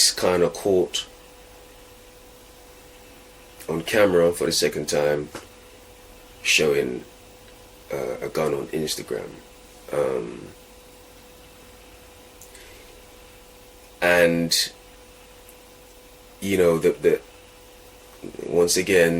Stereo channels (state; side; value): identical; both; correlation 1.00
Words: kind of caught on camera for the second time showing a gun on Instagram, and the once